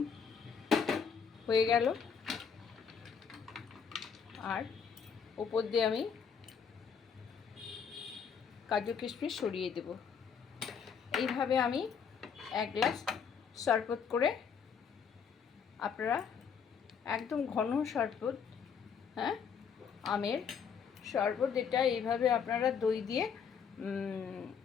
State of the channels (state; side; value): quieter; right; 6.7 dB